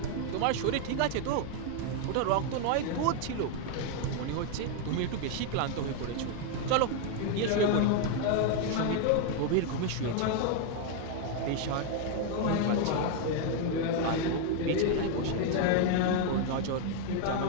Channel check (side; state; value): both; different; correlation 0.00